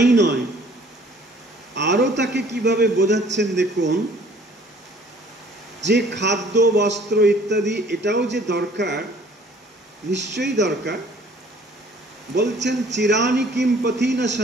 নয়, আরো তাকে কিভাবে বোঝাচ্ছেন দেখুন, যে খাদ্য বস্ত্র ইত্যাদি এটাও যে দরকার, নিশ্চয়ই দরকার। বলছেন চিরানি কিম পথি না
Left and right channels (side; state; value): both; normal; correlation 0.55